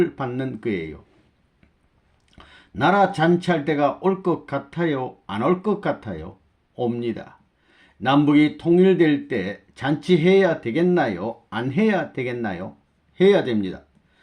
받는 거예요. 나라 잔치할 때가 올 것 같아요? 안 올 것 같아요? 옵니다. 남북이 통일될 때 잔치해야 되겠나요? 안 해야 되겠나요? 해야 됩니다.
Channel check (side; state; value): both; identical; correlation 1.00